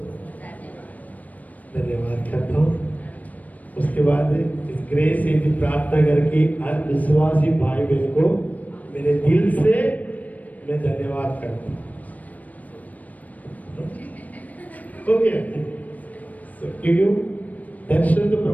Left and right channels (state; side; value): late; right; 0.074 ms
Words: धन्यवाद करता हूँ। उसके बाद इस ग्रेस से भी प्रार्थना करके हर विश्वासी भाई बहन को मेरे दिल से मैं धन्यवाद करता हूँ। क्योंकि दर्शन तो